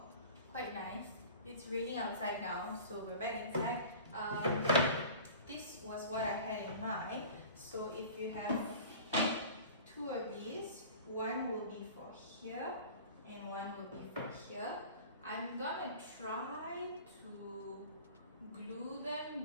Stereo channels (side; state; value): both; inverted; correlation -0.40